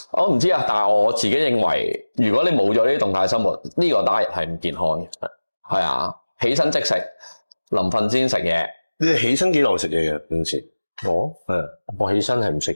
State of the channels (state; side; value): inverted; both; correlation -1.00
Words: 我唔知啊。但係我自己認為，如果你冇咗呢啲動態生活，呢個diet係唔健康嘅。係啊，起身即食，臨瞓先食嘢。你哋起身幾耐食嘢嘅平時？我起身係唔食